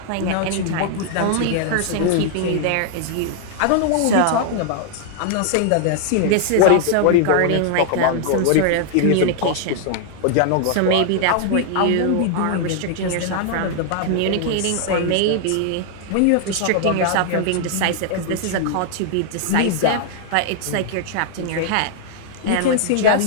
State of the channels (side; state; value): both; different; correlation -0.01